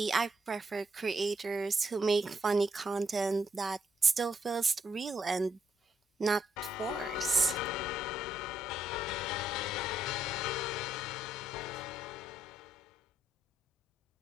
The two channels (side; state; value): both; normal; correlation 0.75